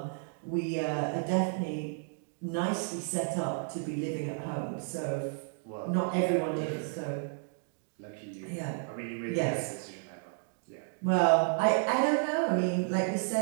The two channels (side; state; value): left; silent; 56 dB below the other